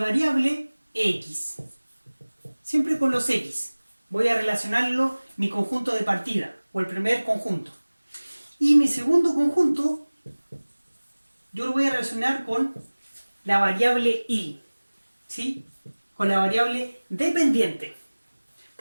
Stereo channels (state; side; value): inverted; both; correlation -1.00